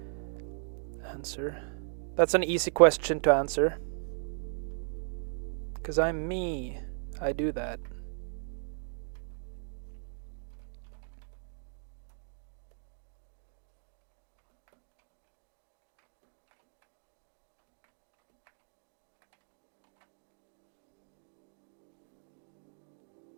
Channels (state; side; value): silent; left; digital silence